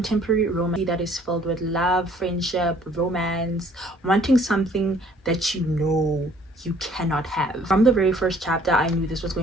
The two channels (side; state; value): both; normal; correlation 0.58